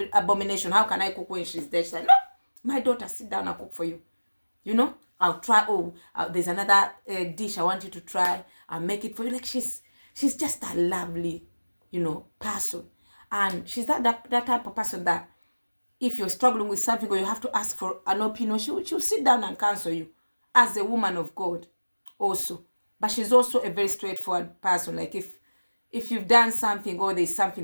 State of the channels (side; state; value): both; inverted; correlation -1.00